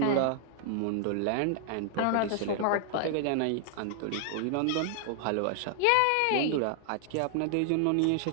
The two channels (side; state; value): both; different; correlation 0.00